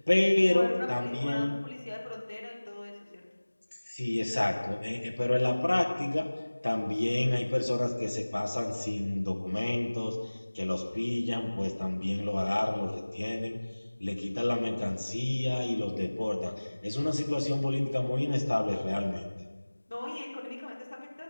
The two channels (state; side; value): inverted; both; correlation -1.00